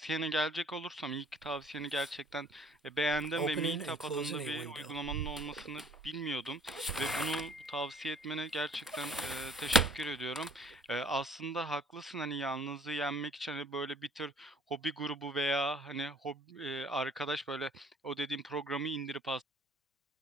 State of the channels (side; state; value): both; normal; correlation 0.56